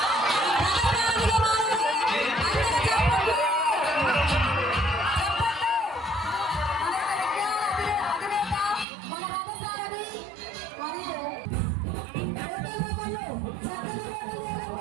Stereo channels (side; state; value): left; drops out; at 8.8 s